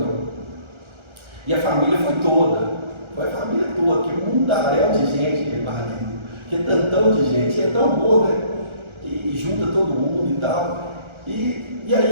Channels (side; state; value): left; late; 1.4 ms